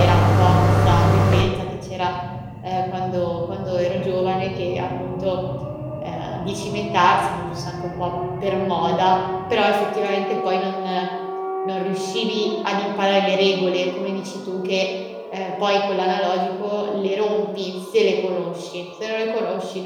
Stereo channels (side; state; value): both; identical; correlation 1.00